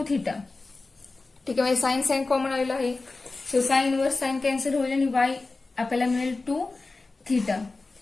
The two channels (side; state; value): right; quieter; 3.5 dB